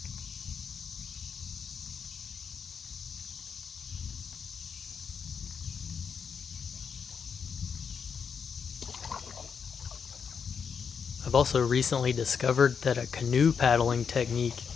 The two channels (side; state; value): right; quieter; 6.5 dB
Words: I've also recently discovered that a canoe paddling technique